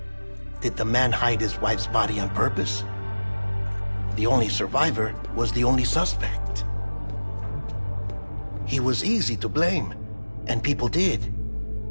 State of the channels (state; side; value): inverted; both; correlation -1.00